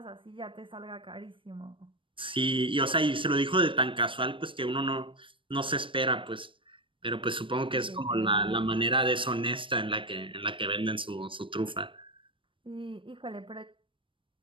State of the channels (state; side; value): late; left; 0.25 ms